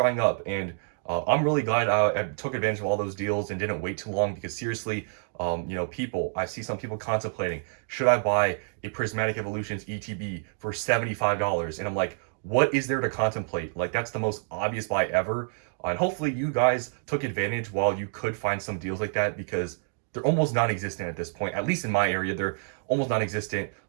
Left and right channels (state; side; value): silent; left; digital silence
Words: up. And I'm really glad I took advantage of all those deals and didn't wait too long, because seriously, I see some people contemplating, should I buy a Prismatic Evolutions ETB for $75? And I'm like, what is there to contemplate? Like, that's the most obvious buy ever. And hopefully you guys took advantage while you could find some deals like that, because they're almost non-existent at this point. At least in my area, they're almost non-existent.